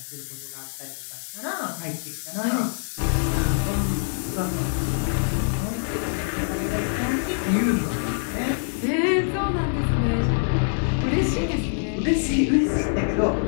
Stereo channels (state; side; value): silent; right; digital silence